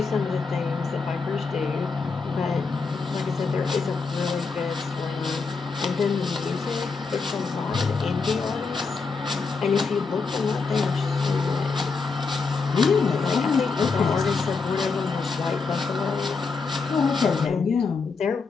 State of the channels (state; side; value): quieter; right; 4.6 dB